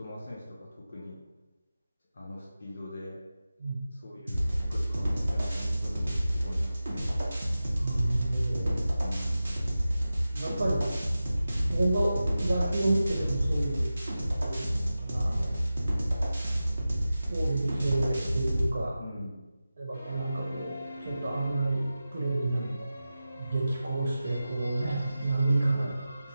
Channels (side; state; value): both; inverted; correlation -0.94